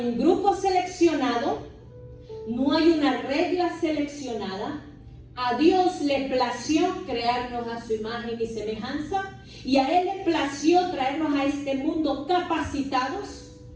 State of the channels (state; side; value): identical; both; correlation 1.00